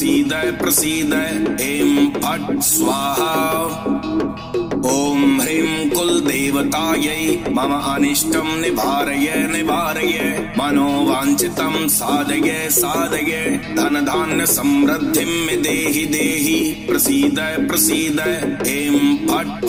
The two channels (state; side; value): identical; both; correlation 1.00